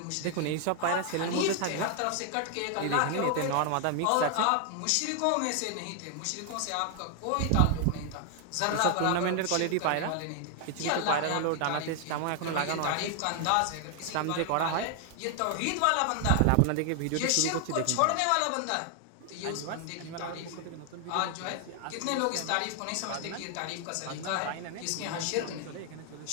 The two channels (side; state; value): both; different; correlation 0.00